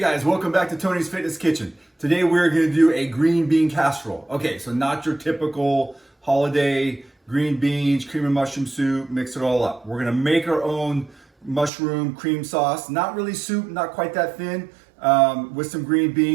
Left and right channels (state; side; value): drops out; left; at 11.7 s